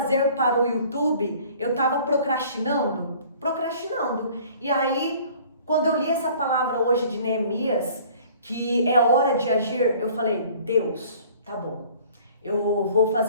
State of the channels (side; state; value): both; inverted; correlation -0.51